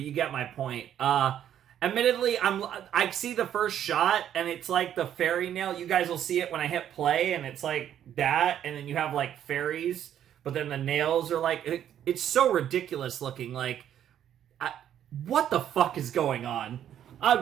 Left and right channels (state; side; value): quieter; left; 10.3 dB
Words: you get my point. Admittedly, I see the first shot, and it's like the fairy nail. You guys will see it when I hit play, and it's like that, and then you have, like, fairies, but then the nails are like... It's so ridiculous looking, like... what the fuck is going on?